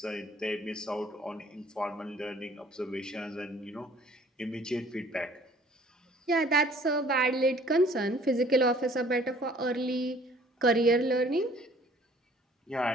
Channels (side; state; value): both; normal; correlation 0.55